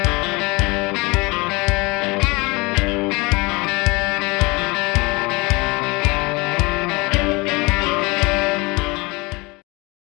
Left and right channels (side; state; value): right; quieter; 25.5 dB